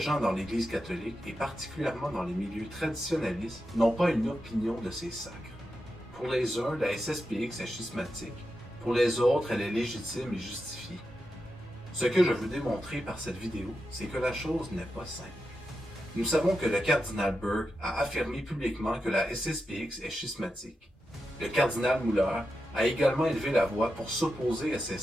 dans l'Église catholique, et particulièrement dans les milieux traditionnalistes, n'ont pas une opinion de ces sacres. Pour les uns, la SSPX est schismatique, pour les autres, elle est légitime et justifiée. Ce que je veux démontrer par cette vidéo, c'est que la chose n'est pas simple. Nous savons que le cardinal Burke a affirmé publiquement que la SSPX est schismatique. Le cardinal Muller a également élevé la voix pour s'opposer à ces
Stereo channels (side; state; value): both; normal; correlation 0.88